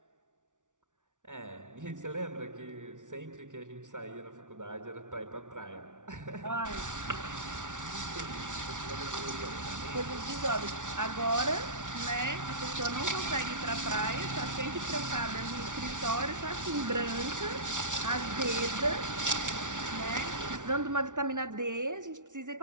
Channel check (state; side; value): late; left; 0.87 ms